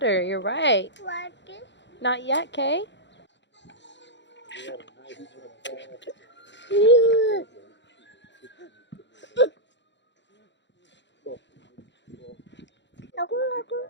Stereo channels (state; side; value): late; right; 0.52 ms